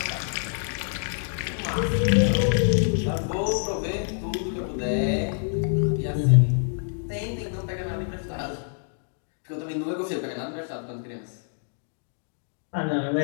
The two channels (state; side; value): silent; right; digital silence